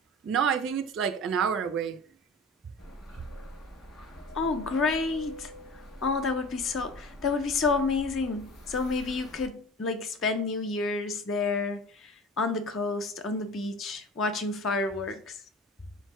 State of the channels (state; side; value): normal; both; correlation 0.38